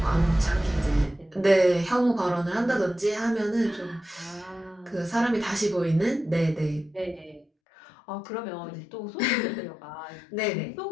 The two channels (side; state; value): right; drops out; at 7.5 s